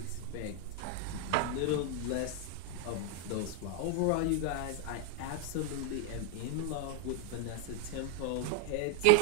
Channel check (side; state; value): both; different; correlation 0.01